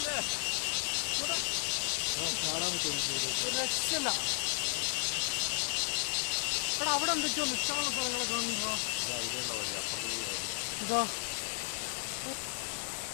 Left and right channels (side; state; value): right; silent; 55 dB below the other